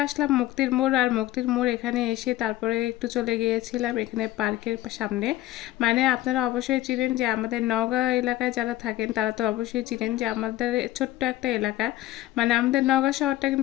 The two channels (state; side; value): quieter; right; 15.5 dB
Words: আসলাম মুক্তির মোড়, আর মুক্তির মোড় এখানে এসে তারপরে একটু চলে গিয়েছিলাম এখানে পার্কের সামনে। মানে আপনারা অবশ্যই চিনেন যে আমাদের নওগাঁ এলাকায় যারা থাকেন তারা তো অবশ্যই চিনেন যে আমাদের ছোট্ট একটা এলাকা, মানে আমাদের নওগাঁ শহরটা